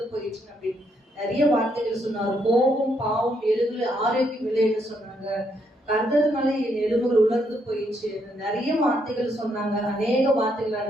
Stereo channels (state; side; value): normal; both; correlation 0.75